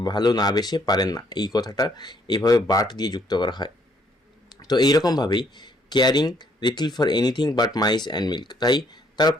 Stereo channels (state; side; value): normal; both; correlation 0.67